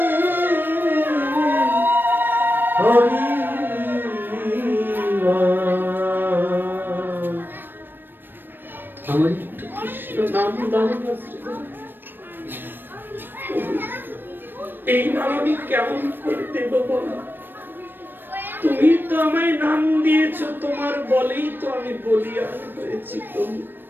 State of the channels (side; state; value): left; late; 0.095 ms